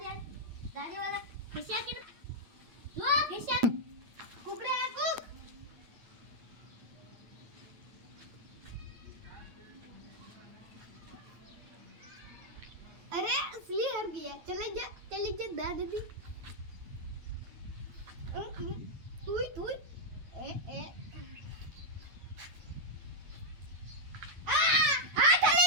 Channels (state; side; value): late; left; 8.9 ms